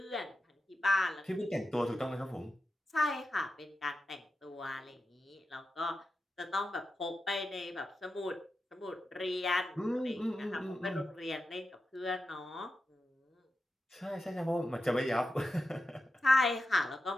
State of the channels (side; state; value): both; normal; correlation 0.90